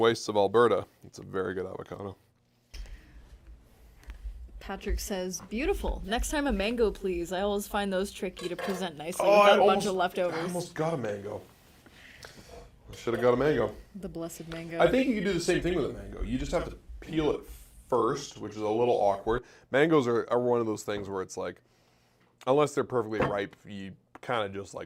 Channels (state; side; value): identical; both; correlation 1.00